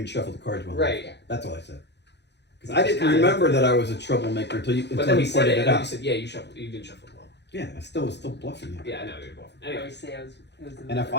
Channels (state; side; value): late; right; 0.50 ms